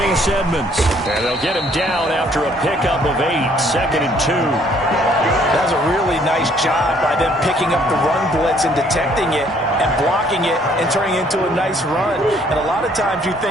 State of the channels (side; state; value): both; normal; correlation 0.63